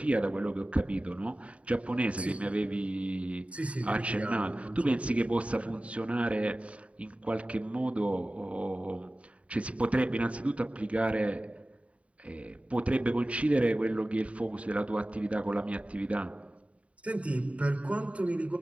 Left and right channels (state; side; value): late; left; 0.064 ms